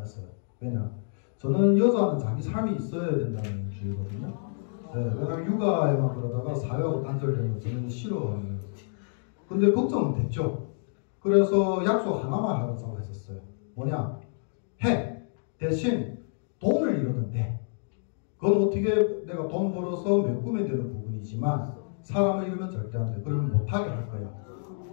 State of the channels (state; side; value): silent; right; digital silence